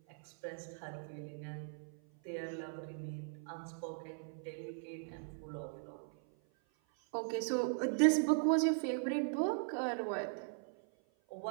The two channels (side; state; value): left; silent; 52 dB below the other